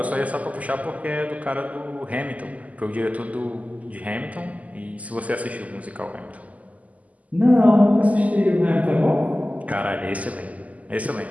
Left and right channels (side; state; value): left; late; 0.073 ms